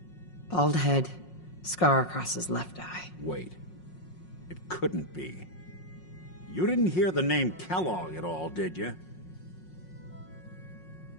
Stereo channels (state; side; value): late; right; 5.5 ms